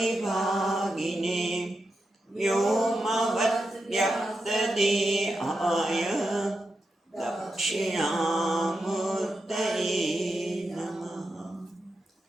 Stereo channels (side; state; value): both; normal; correlation 0.88